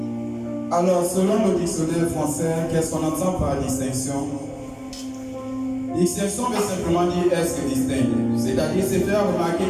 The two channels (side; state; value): both; identical; correlation 1.00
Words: Alors, selon le dictionnaire français, qu'est-ce qu'on entend par distinction? Distinction veut simplement dire être distinct, c'est-à-dire se faire remarquer